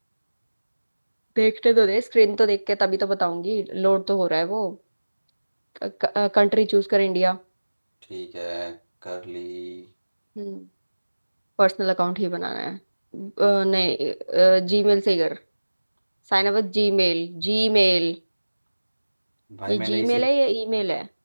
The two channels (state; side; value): inverted; both; correlation -1.00